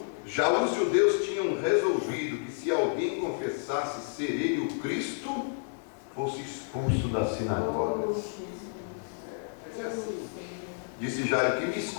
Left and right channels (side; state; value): right; silent; digital silence